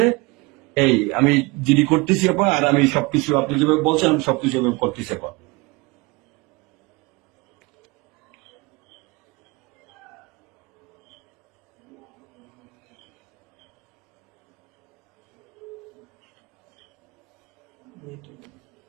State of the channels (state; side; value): quieter; left; 25.2 dB